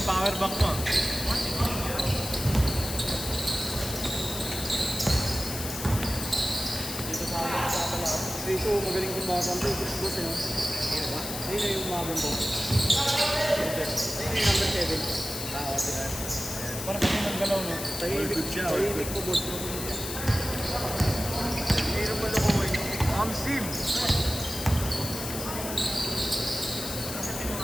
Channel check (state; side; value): noise; left; hiss, 6 dB below the sound